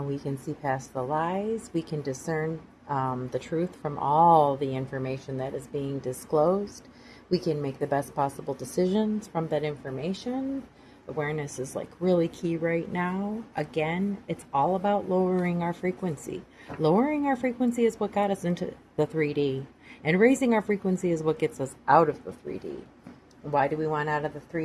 can see past the lies. We can discern the truth from all the information that is being disclosed. We can make the best possible decisions from that information. Awareness is really key right now. Again, it's all about lowering our frequency. Lowering our frequency is what got us into the 3D, and raising our frequency is what gets us out of the 3D. Why do we want out of the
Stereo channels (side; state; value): both; identical; correlation 1.00